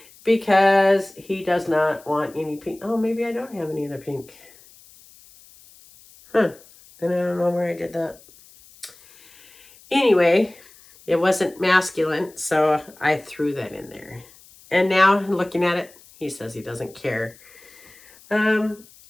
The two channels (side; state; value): left; noise; hiss, 25 dB below the sound